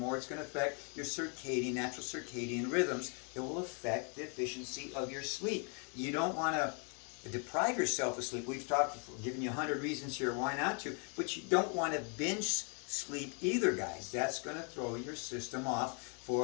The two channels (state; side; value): quieter; right; 38.5 dB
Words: it's going to affect your natural circadian rhythms. It will affect the efficiency of your sleep. You don't want to deprive yourself of sleep. We've given you 100 reasons here why not to, but you don't want to binge sleep either, guys. That's going to throw your system off